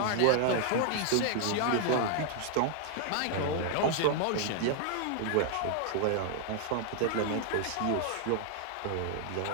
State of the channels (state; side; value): different; both; correlation 0.00